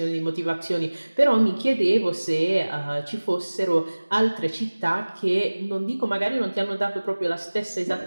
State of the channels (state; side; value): inverted; both; correlation -1.00